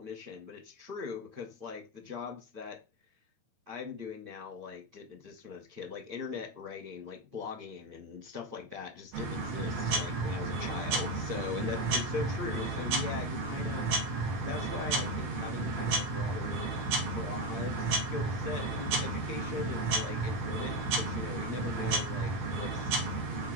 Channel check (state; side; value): late; left; 8.7 ms